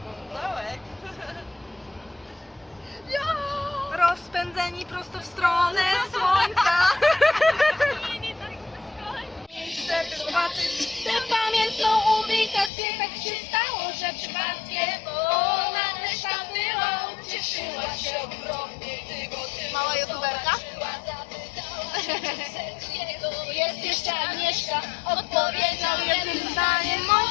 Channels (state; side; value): drops out; right; at 12.7 s